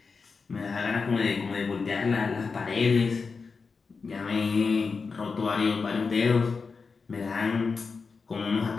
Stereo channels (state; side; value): quieter; right; 4.8 dB